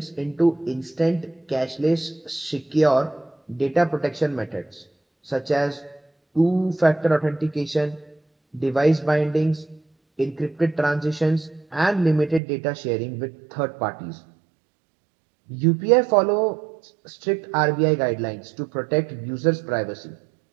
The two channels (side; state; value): left; drops out; at 12.4 s